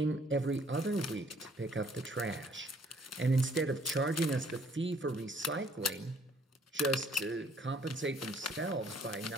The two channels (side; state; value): both; normal; correlation 0.61